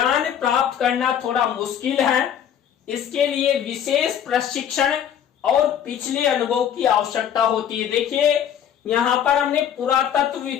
प्राप्त करना थोड़ा मुश्किल है। इसके लिए विशेष प्रशिक्षण और पिछले अनुभव की आवश्यकता होती है। देखिए, यहाँ पर हमने पुरातत्व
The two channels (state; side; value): quieter; right; 9.3 dB